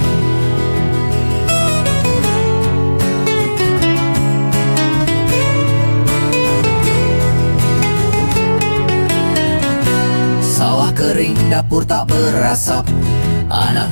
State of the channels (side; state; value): both; inverted; correlation -1.00